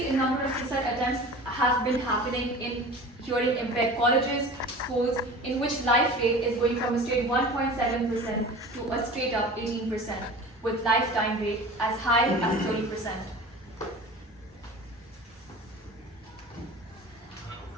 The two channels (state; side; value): normal; both; correlation 0.38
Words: in number of suicide attempts have been happening in hearing impaired colleges, schools, in which life rate is going from a straight 1.7% to a straight up 18%, with lifetime rate as high as 30%.